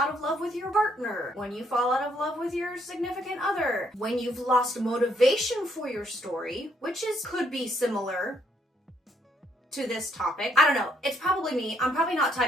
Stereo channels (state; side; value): normal; both; correlation 0.70